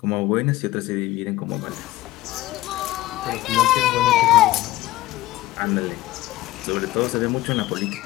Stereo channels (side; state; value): right; quieter; 16.6 dB